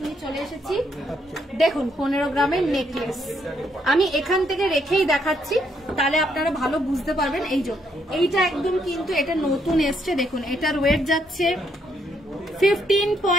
নিয়ে চলে এসেছি। দেখুন, 15 গ্রামের নেকলেস আমি এখান থেকে রেখেই দেখাচ্ছি, তাহলে আপনারা ভালো বুঝতে পারবেন। এইটা একদম কিন্তু এটা নতুন এসছে। দেখুন, এটার ওয়েট যাচ্ছে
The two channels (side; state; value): both; normal; correlation 0.73